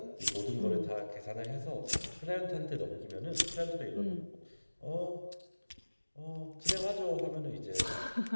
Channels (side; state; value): both; inverted; correlation -1.00